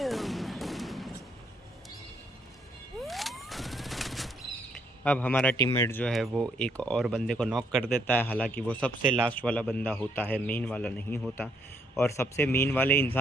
अब हमारा टीममेट जो है वो एक और बंदे को नॉक कर देता है, हालांकि वो सबसे लास्ट वाला बंदा होता है, मेन वाला नहीं होता। और सबसे मेन वाले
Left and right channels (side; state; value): both; normal; correlation 0.72